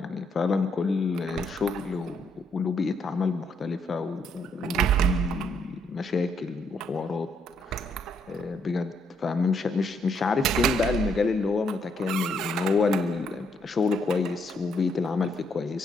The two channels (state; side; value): normal; both; correlation 0.73